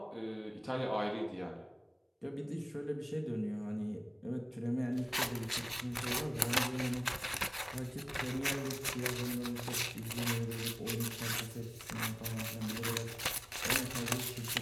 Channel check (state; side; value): identical; both; correlation 1.00